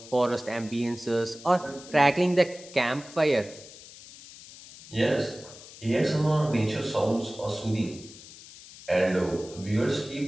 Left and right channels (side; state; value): left; noise; hiss, 18 dB below the sound